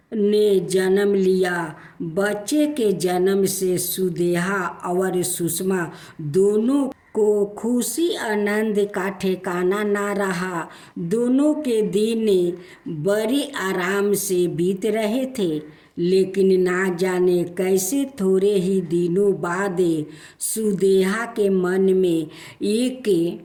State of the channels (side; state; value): both; identical; correlation 1.00